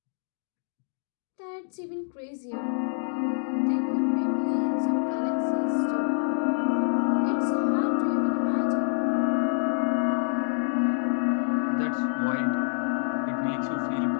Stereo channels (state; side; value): silent; right; digital silence